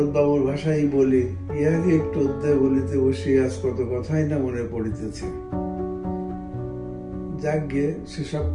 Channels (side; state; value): both; identical; correlation 1.00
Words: বাবুর ভাষাই বলি, ইহাকে একটু অধ্যায় বলিতে বসি, আজ কত কথাই না মনে পড়িতেছে। যাকে সেসব